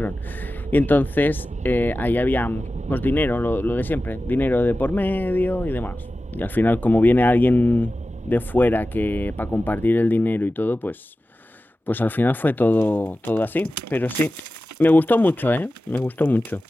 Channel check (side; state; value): both; normal; correlation 0.94